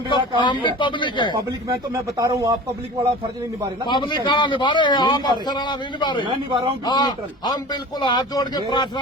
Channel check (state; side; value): normal; both; correlation 0.38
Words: काम हम भी है। पब्लिक है। पब्लिक में तो मैं बता रहा हूँ, आप पब्लिक वाला फर्ज नहीं निभा रहे ना। पब्लिक कहाँ निभा रहे हैं? नहीं आप निभा रहे। अफसर वाला नहीं निभा रहे। मैं निभा रहा हूँ हाँ, न्यूट्रल। हम बिल्कुल हाथ जोड़ के